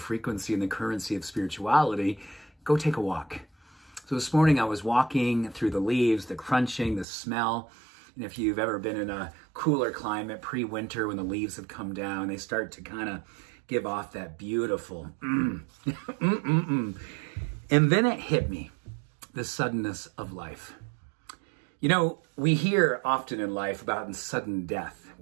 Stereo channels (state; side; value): drops out; left; at 7.1 s